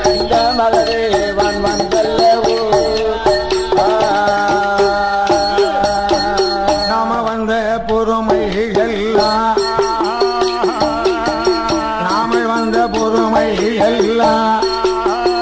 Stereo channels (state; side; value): identical; both; correlation 1.00